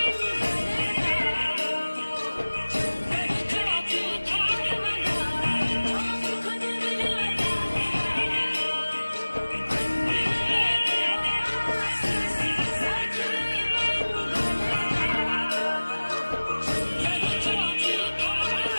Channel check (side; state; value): both; inverted; correlation -1.00